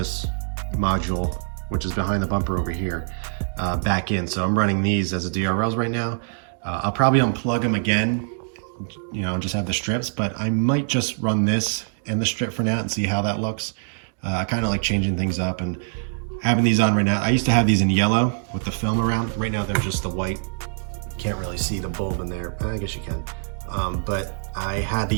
module, which is behind the bumper over here, back in. So I'm running these as a DRLs right now. I'll probably unplug them again, and just have the strips, but I might just run this and the strip for now and see how that looks. I kind of like changing things up and having these on right now. I used to have these in yellow with the film around. Right now they're just the white. Can't really see the bulb in there. I guess you can. But I had the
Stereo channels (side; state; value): left; silent; digital silence